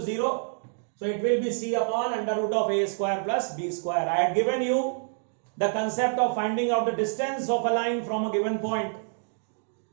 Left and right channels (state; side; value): silent; left; digital silence